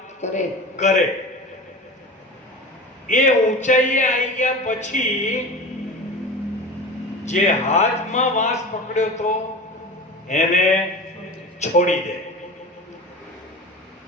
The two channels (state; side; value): normal; both; correlation 0.32